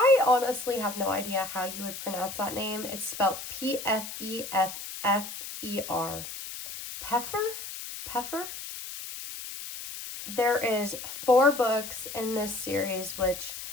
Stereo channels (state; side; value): noise; left; hiss, 9 dB below the sound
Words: honestly have no idea how you would pronounce that name. It's spelled P-F-E-F-F-E-R. Pfeffer? There is 4 books in this series, which